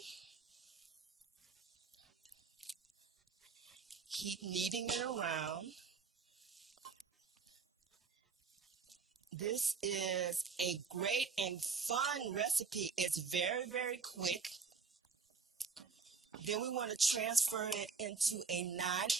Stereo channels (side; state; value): left; quieter; 5.2 dB